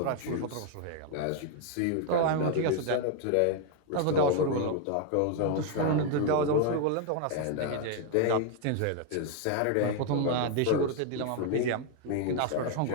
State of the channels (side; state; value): both; different; correlation 0.00